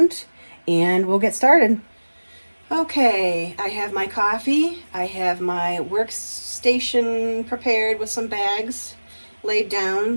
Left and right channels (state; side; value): inverted; both; correlation -1.00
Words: and we'll get started. Okay, I have my coffee, I have my workstation prepared with some bags laid